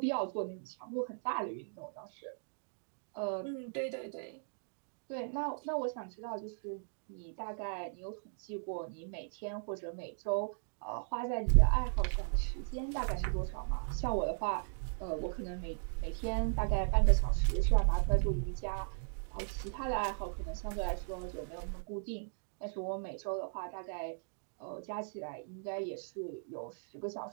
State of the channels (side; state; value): left; silent; digital silence